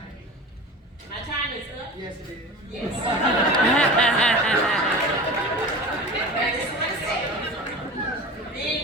My time is up? Yes, it is. Yes.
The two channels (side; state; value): both; normal; correlation 0.33